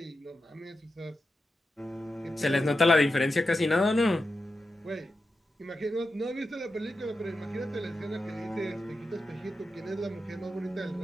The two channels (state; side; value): normal; both; correlation 0.89